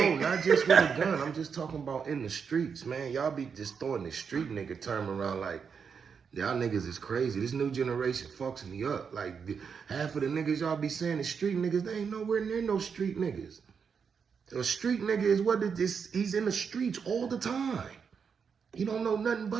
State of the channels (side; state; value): left; quieter; 6.3 dB